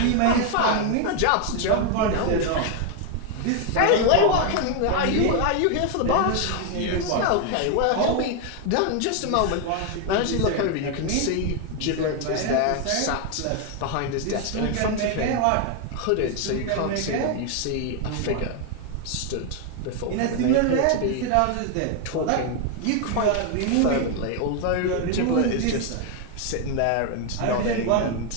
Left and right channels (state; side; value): different; both; correlation 0.01